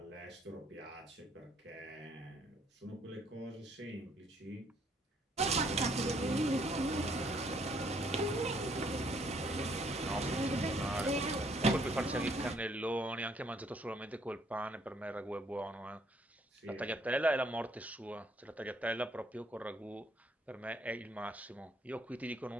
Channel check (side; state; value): both; normal; correlation 0.66